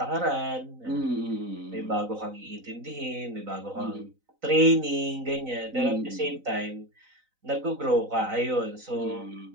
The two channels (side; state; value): left; late; 3.9 ms